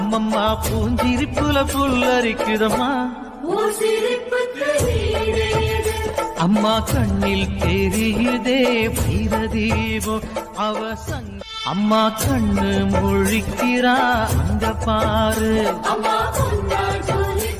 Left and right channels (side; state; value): both; identical; correlation 1.00